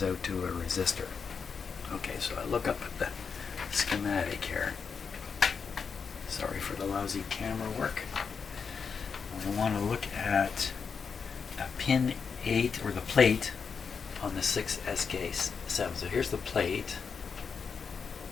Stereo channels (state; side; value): quieter; right; 5.9 dB